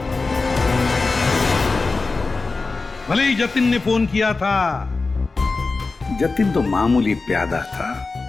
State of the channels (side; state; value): right; quieter; 3.9 dB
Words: भले ही जतिन ने फोन किया था, जतिन तो मामूली प्यादा था।